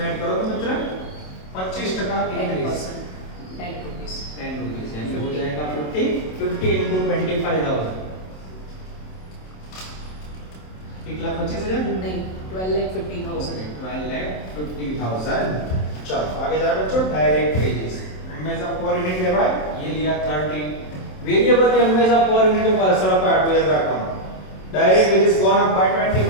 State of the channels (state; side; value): late; right; 27 ms